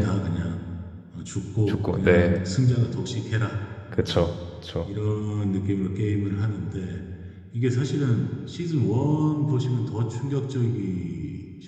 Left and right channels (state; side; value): identical; both; correlation 1.00